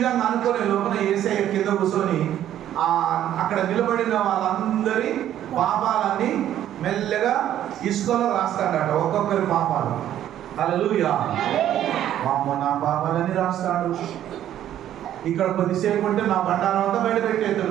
అనుకునే లోపల యేసయ్య కింద కూర్చొని అక్కడ నిలబడిన వాళ్ళందరి పాపాలన్నీ మెల్లగా ఇసుకలో రాస్తాడట, ఒక్కొక్కరి పాపాలు. హల్లెలూయా. అమ్మ నా పాపాలన్నీ రాస్తాడు. ఇక్కడ కొద్దిసేపు ఉంటే నా బండారం అంతా బయట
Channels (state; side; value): quieter; left; 11.5 dB